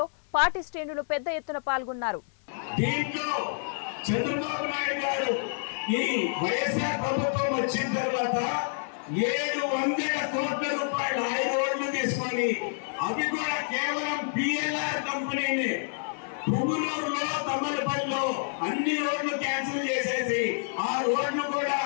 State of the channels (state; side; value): silent; right; digital silence